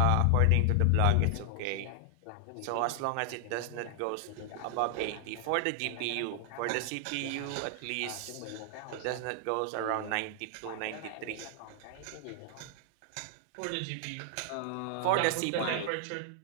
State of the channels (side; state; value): both; different; correlation 0.00